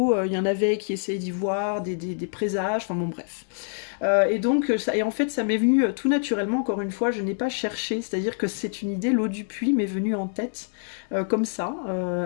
Il y en avait qui essayaient d'y voir des présages, enfin bon bref. Et en fait ça m'est venu tout naturellement, encore une fois, je n'ai pas cherché, c'est-à-dire que c'est une idée, l'eau du puits m'est venue en tête comme ça.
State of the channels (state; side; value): silent; right; digital silence